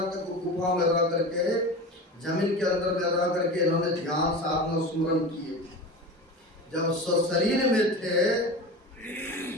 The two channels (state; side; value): normal; both; correlation 0.30